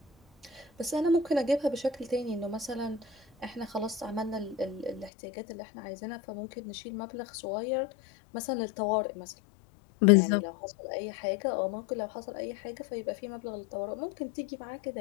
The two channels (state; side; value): drops out; right; at 5.1 s